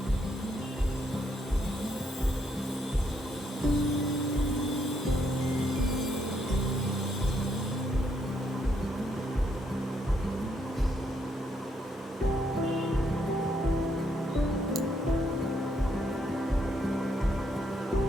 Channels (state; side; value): normal; both; correlation 0.75